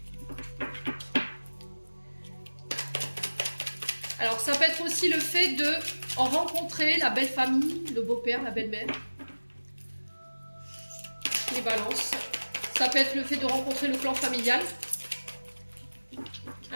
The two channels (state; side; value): inverted; both; correlation -1.00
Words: Alors, ça peut être aussi le fait de rencontrer la belle famille, le beau-père, la belle-mère. Les balances. Ça peut être le fait de rencontrer le clan familial.